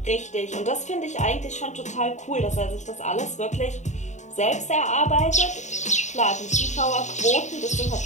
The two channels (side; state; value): right; late; 0.34 ms